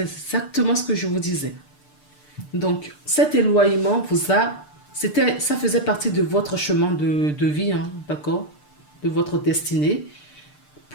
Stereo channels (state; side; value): late; right; 6.7 ms